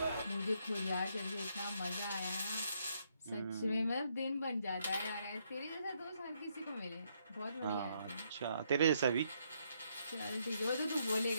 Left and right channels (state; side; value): inverted; both; correlation -0.74